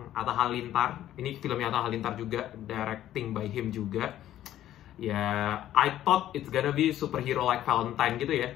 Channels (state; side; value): quieter; right; 12.6 dB